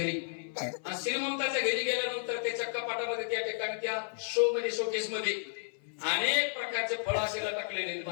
आणि श्रीमंताच्या घरी गेल्यानंतर त्याच्या कपाटामध्ये त्या ठिकाणी त्या शोकेस मध्ये अनेक प्रकारचे फळ असे टाकलेले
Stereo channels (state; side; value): silent; right; 56 dB below the other